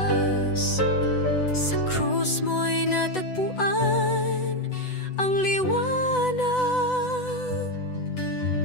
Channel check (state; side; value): late; right; 8.0 ms